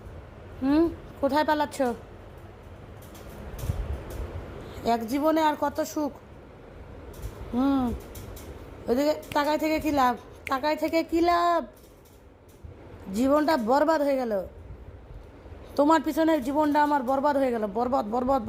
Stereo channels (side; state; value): both; identical; correlation 1.00